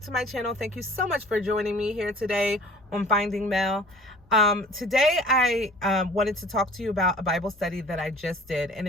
my channel. Thank you so much for joining me here today on Finding Mel. Today I wanted to talk to you about a Bible study that I just did, and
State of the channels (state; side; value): noise; left; rumble, 29 dB below the sound